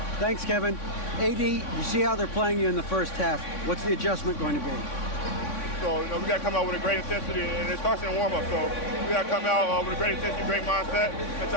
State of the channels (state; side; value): late; right; 3.6 ms